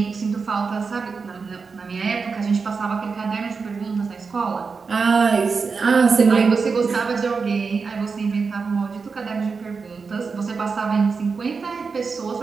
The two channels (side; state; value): left; quieter; 4.9 dB